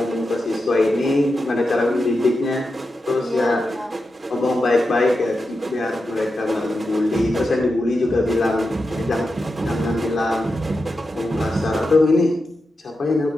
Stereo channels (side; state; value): both; normal; correlation 0.89